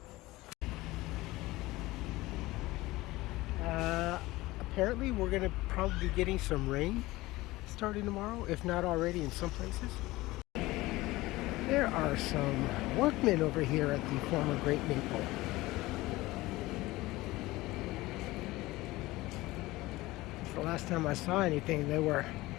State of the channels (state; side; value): quieter; right; 19.2 dB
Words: Apparently we're gonna probably be getting some rain starting tomorrow, if not already in some places. There are some workmen over here at the former Great Maple. The last time I saw anything, they were